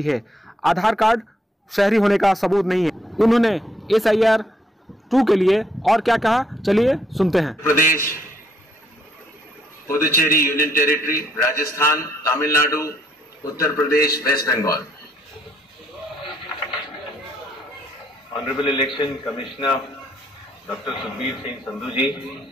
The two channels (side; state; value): both; normal; correlation 0.70